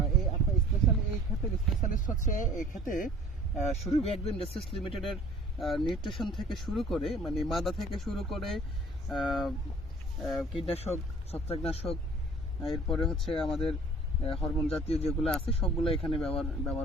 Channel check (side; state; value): both; normal; correlation 0.50